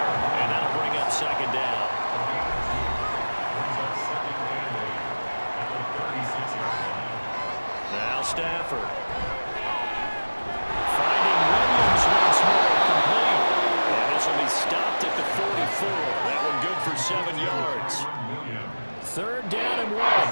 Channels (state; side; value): inverted; both; correlation -1.00